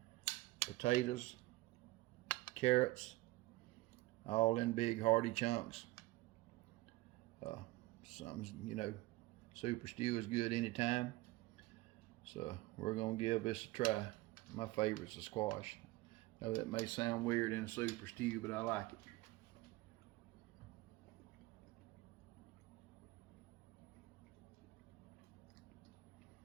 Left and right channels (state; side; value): quieter; left; 19.3 dB